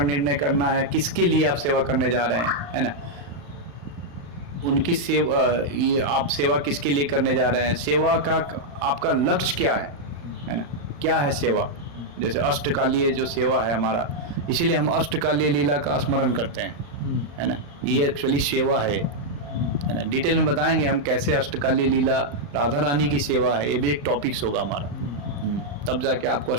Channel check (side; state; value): left; late; 35 ms